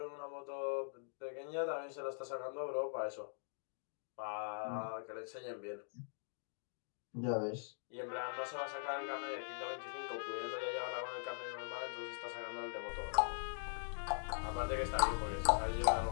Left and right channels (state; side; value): silent; right; digital silence